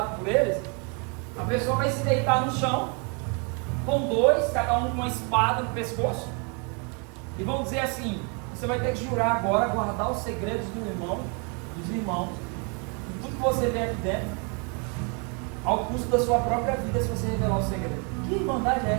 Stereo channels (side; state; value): left; quieter; 35.2 dB